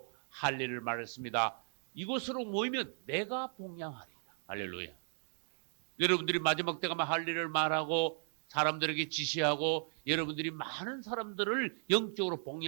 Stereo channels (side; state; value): left; silent; digital silence